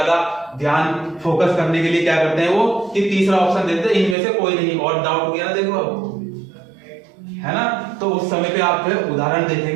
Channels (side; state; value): left; drops out; at 4.2 s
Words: ध्यान फोकस करने के लिए क्या करते हैं वो कि तीसरा ऑप्शन देते हैं इनमें से कोई नहीं, और डाउट हो गया ना देखो अब, है ना। तो उस समय पे आप फिर उदाहरण